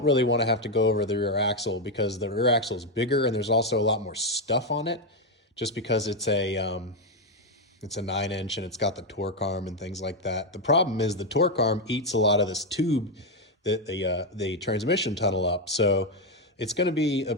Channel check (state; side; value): normal; both; correlation 0.05